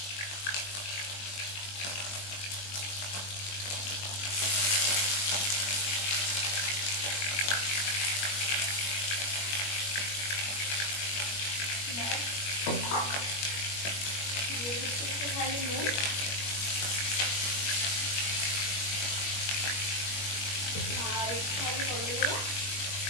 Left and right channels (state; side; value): late; right; 21 ms